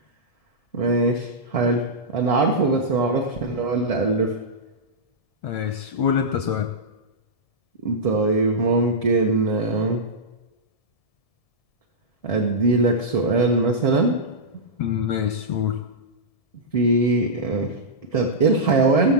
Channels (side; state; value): right; late; 1.7 ms